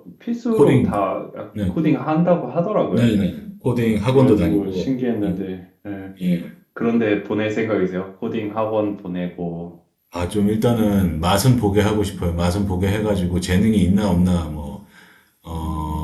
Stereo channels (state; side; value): identical; both; correlation 1.00